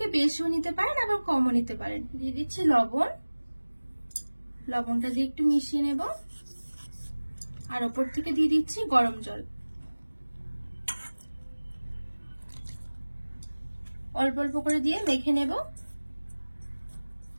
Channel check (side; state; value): both; inverted; correlation -1.00